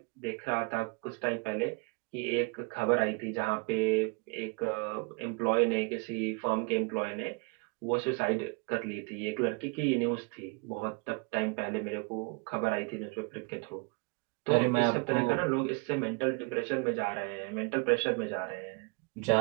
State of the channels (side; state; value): left; quieter; 31.6 dB